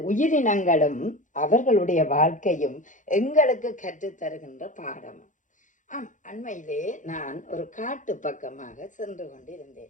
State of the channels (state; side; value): late; right; 0.37 ms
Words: உயிரினங்களும் அவர்களுடைய வாழ்க்கையும் எங்களுக்கு கற்றுத்தருகின்ற பாடம். அண்மையிலே நான் ஒரு காட்டு பக்கமாக சென்று